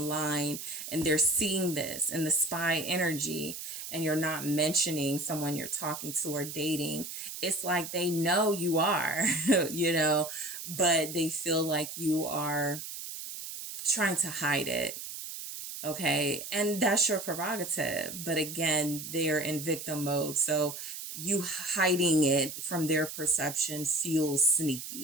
and they're seeing this in the spy energy, and you're not mentioning someone you're talking to or dating, it's like they know you are, you know, but they feel like you are trying to hide it. Okay. And that's your prerogative. But again, they're in victim mode. So you hiding it from their perception feels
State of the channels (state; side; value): noise; right; hiss, 9 dB below the sound